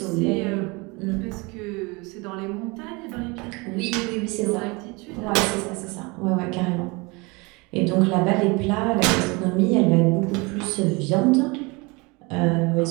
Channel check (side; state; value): left; quieter; 26.8 dB